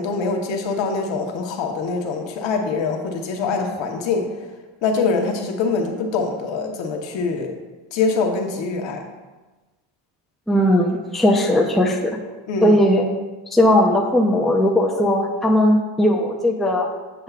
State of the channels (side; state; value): both; normal; correlation 0.52